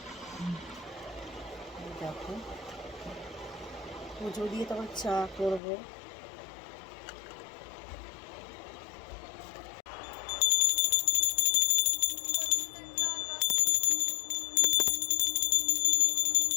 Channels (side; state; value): right; drops out; at 5.6 s